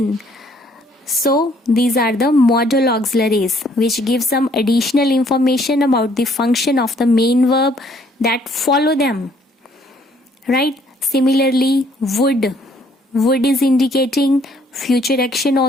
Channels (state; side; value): normal; both; correlation 0.63